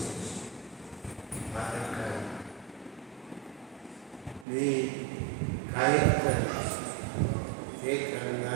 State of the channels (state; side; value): drops out; left; at 4.5 s